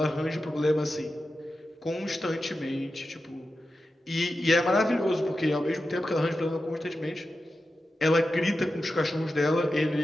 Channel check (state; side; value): normal; both; correlation 0.91